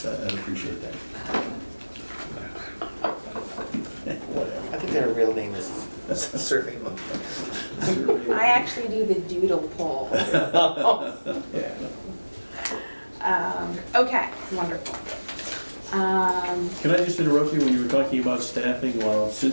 I'd appreciate that. Whatever. I think their real name is Survey Monkey. I actually do the doodle poll. Yeah. Okay, wonderful. Can I just interrupt you when you were talking about staffing? While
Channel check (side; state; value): both; inverted; correlation -1.00